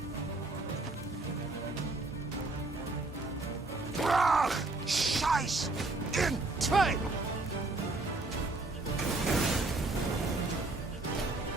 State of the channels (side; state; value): left; quieter; 3.1 dB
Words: Brach! Scheiß! In train!